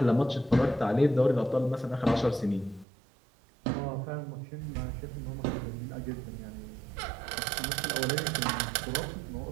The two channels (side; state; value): left; drops out; at 2.9 s